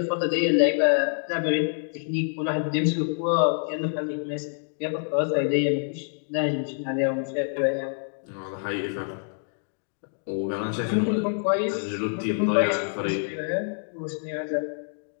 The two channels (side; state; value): right; silent; digital silence